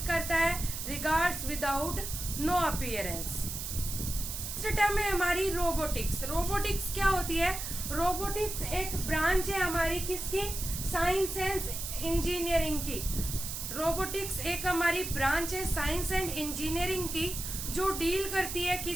करता है regards without no appearance. Next term है हमारी रोबोटिक्स। रोबोटिक्स क्या होती है, रोबोटिक्स एक ब्रांच है हमारी किसकी, साइंस एंड इंजीनियरिंग की। रोबोटिक्स एक हमारी ब्रांच है साइंस एंड इंजीनियरिंग की, जो डील करती है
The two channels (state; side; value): noise; right; hiss, 6 dB below the sound